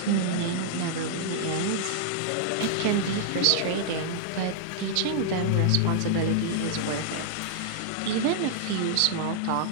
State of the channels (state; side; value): different; both; correlation -0.01